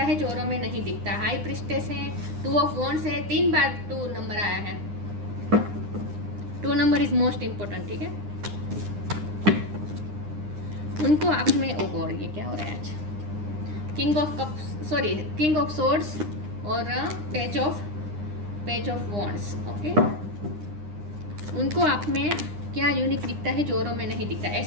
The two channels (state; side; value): late; left; 9.8 ms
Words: है जो औरों में नहीं दिखता। हाई प्रिस्टेस है, 2 ऑफ वॉन्ड्स है। 3 बार 2 नंबर आया है। 2 नंबर इज मोस्ट इंपॉर्टेंट, ठीक है। उनको आप में ओ गॉड, ये क्या हो रहा है आज। King of cups, sorry, king of swords और पेज ऑफ वॉन्ड्स। ओके, उनको आप में क्या यूनिक दिखता है जो औरों में नहीं दिखता।